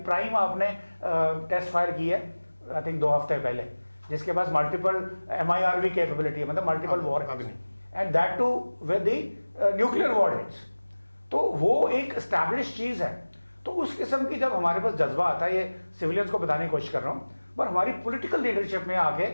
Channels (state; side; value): inverted; both; correlation -1.00